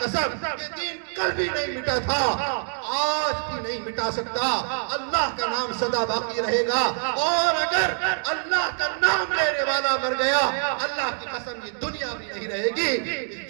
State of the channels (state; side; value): silent; left; digital silence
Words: یہ دین کل بھی نہیں مٹا تھا, آج بھی نہیں مٹا سکتا. اللہ کا نام سدا باقی رہے گا, اور اگر اللہ کا نام لینے والا مر گیا, اللہ کی قسم یہ دنیا بھی نہیں رہے گی. اس